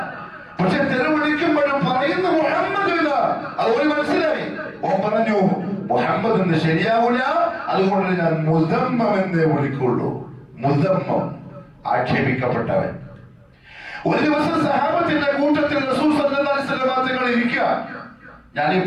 പക്ഷെ തെറി വിളിക്കുമ്പോഴും പറയുന്ന മുഹമ്മദ് ഇല്ല. അത് ഓന് മനസ്സിലായി. ഓൻ പറഞ്ഞു മുഹമ്മദ് എന്ന് ശരിയാവൂല, അതുകൊണ്ട് ഞാൻ മുദമ്മം എന്നേ വിളിക്കുള്ളൂ. മുദമ്മം, ആക്ഷേപിക്കപ്പെട്ടവൻ. ഒരു ദിവസം സഹാബത്തിന്റെ കൂട്ടത്തിൽ റസൂൽ സല്ലല്ലാഹു അലൈഹി വസല്ലം തങ്ങൾ ഇരിക്കുക. ഞാൻ ഈ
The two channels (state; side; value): identical; both; correlation 1.00